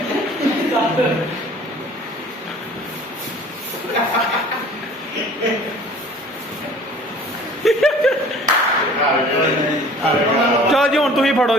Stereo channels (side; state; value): both; normal; correlation 0.48